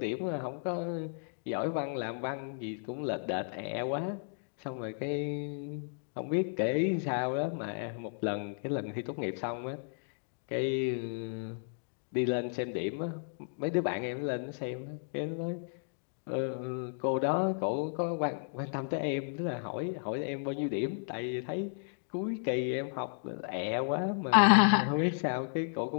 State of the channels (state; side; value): silent; right; digital silence